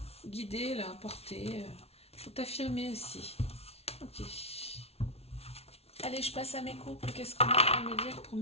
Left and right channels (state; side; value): late; right; 0.30 ms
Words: guider, là, porter. Faut t'affirmer aussi. Ok. Allez, je passe à mes couples. Qu'est-ce qu'on a à me dire pour